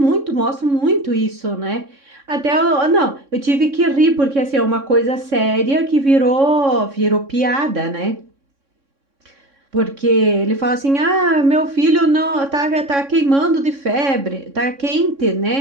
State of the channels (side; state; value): left; late; 3.6 ms